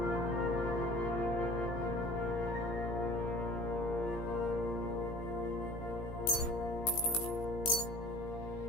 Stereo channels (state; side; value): late; right; 17 ms